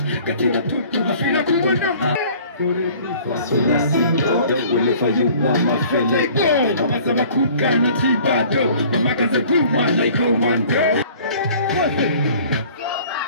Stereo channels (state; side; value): inverted; both; correlation -0.51